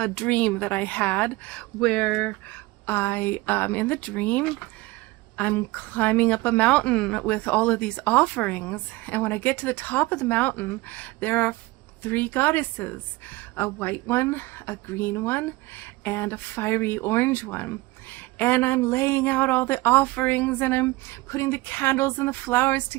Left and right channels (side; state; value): left; quieter; 21.2 dB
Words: dream that I had, where in the dream, I'm climbing up a mountain with all of these offerings, and when I get to the top of the mountain, there are 3 goddesses, a white one, a green one, and a fiery orange one. And I'm laying out all the offerings, and I'm putting the candles and the flowers